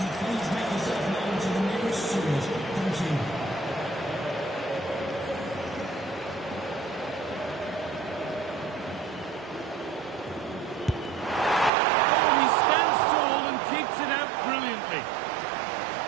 Oh, he stands tall and keeps it out brilliantly.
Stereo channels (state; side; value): drops out; left; at 11.7 s